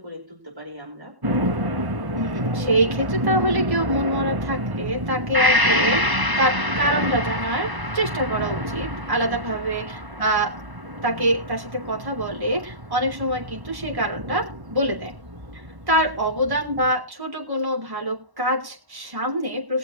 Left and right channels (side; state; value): left; late; 1.1 ms